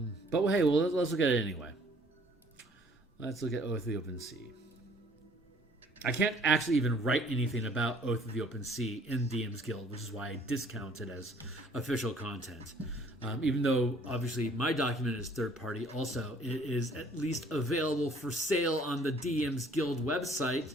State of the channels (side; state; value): both; normal; correlation 0.58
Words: hey, well, let's look at it anyway. Let's look at Oath of the Open Sea. I can't actually even write anything about Oath of the Open Sea in DMsGuild, which is why I discount it as official content. Even though, obviously, my document is third-party, also, it is at least available for sale on the DMsGuild website.